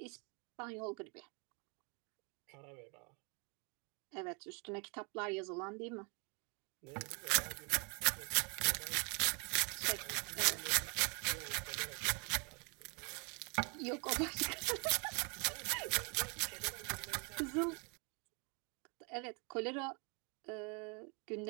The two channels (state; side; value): quieter; left; 33.9 dB